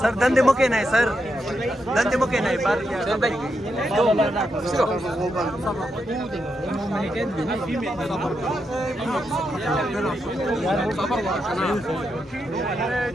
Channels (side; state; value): both; normal; correlation 0.83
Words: सर धंधे मुके नहीं, सर धंधे मुके नहीं पर